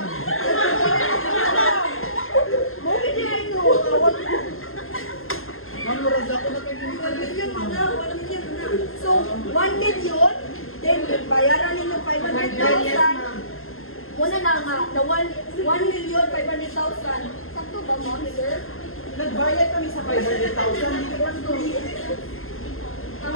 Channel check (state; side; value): late; right; 0.61 ms